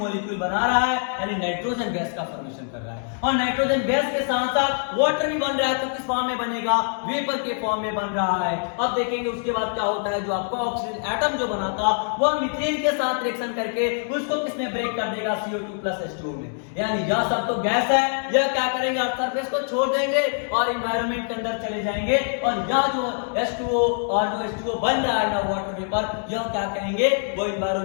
बना रहा है, यानी नाइट्रोजन गैस का फॉर्मेशन कर रहा है। और नाइट्रोजन गैस के साथ साथ वाटर भी बन रहा है, तो किस फॉर्म में बनेगा, वेपर के फॉर्म में बन रहा है। अब देखेंगे उसके बाद क्या होता है, जो आपका ऑक्सीजन एटम जो बना था वह मीथेन के साथ रिएक्शन करके उसको किसमें ब्रेक कर देगा, CO2 प्लस H2O में। यानी यह सब तो गैस है, यह क्या करेंगे, अर्थ सरफेस को छोड़ देंगे और एनवायरनमेंट के अंदर चले जाएंगे। और यह जो H2O और जो H2O बन रहा है ना वाटर वेपर, यह क्या करेंगे, वो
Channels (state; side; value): silent; right; 62 dB below the other